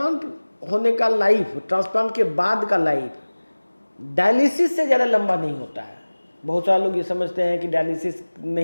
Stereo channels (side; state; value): both; inverted; correlation -1.00